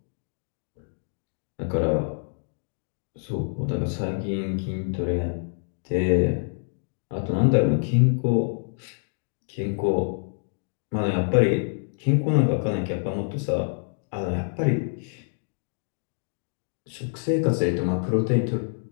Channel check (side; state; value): right; silent; digital silence